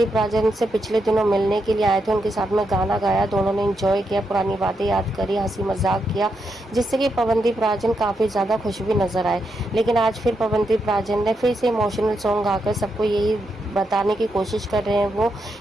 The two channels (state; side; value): normal; both; correlation 0.83